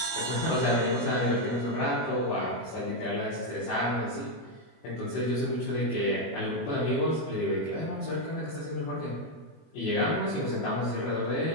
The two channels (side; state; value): right; late; 21 ms